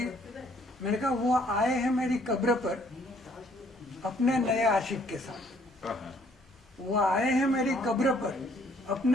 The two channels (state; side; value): normal; both; correlation 0.63